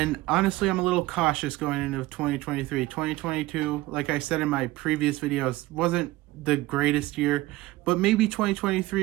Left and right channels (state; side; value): quieter; left; 18.6 dB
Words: honestly, I'm a little cautious going into 2023. 2022, like I said in my previous videos, wasn't the greatest year, but maybe